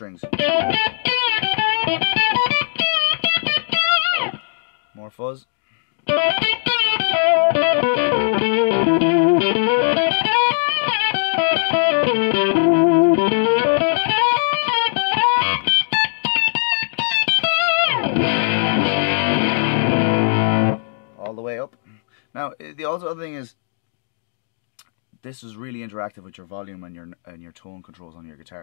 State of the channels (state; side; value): silent; right; digital silence